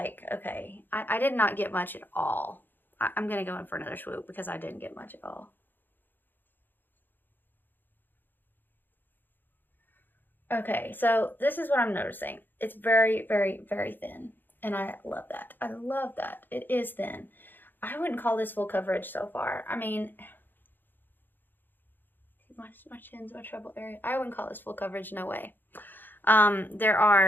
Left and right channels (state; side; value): late; right; 0.092 ms